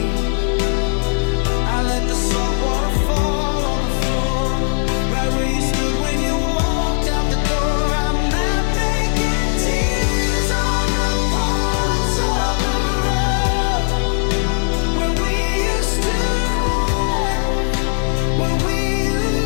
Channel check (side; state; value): right; silent; digital silence